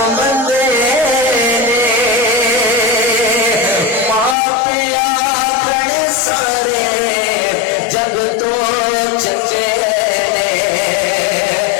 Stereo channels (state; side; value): drops out; right; at 4.4 s